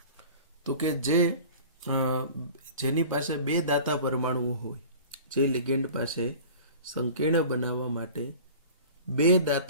તો કે જેની પાસે બે દાતા પરમાણુઓ હોય, જે લિગેન્ડ પાસે સંકીર્ણ બનાવવા માટે બે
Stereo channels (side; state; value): both; inverted; correlation -0.41